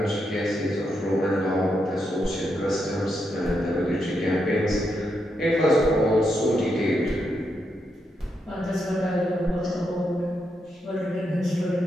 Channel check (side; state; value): both; normal; correlation 0.82